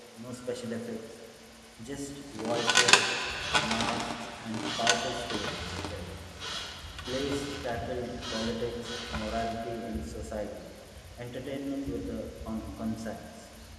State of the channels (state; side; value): identical; both; correlation 1.00